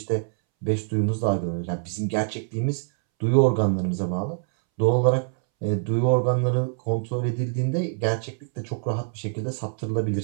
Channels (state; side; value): silent; left; 62 dB below the other